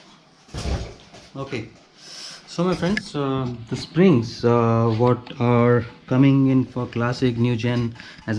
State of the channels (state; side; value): identical; both; correlation 1.00